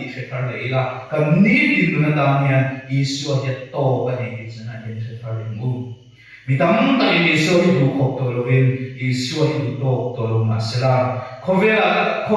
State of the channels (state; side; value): identical; both; correlation 1.00